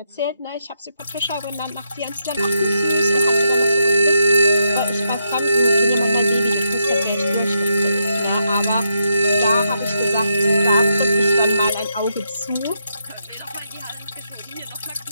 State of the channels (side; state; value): both; inverted; correlation -0.81